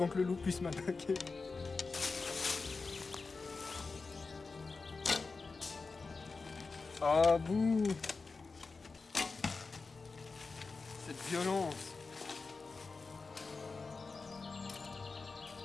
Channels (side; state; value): right; quieter; 4.2 dB